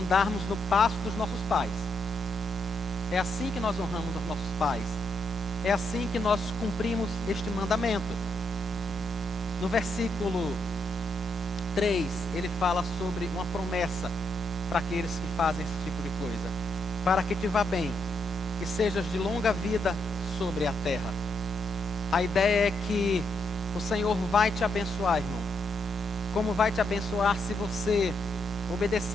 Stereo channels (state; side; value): normal; both; correlation 0.79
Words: no passo dos nossos pais. É assim que nós honramos os nossos pais. É assim que nós cumprimos este mandamento. No versículo 3, ele fala sobre uma promessa para aqueles que fazem esse tipo de coisa. Para que te vá bem, que sejas de longa vida sobre a terra. A ideia é que o Senhor vai te abençoar, irmão. Como vai te abençoar se você